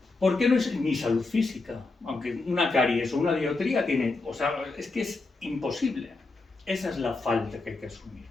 ¿Por qué no es ni salud física? Aunque una caries o una dioptría tiene, o sea, es que es imposible. Esa es la falta que hay que asumir.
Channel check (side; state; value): right; quieter; 3.5 dB